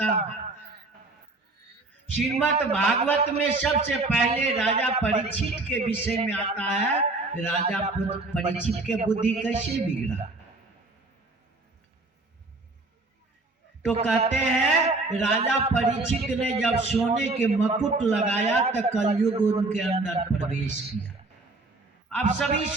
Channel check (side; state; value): left; quieter; 3.2 dB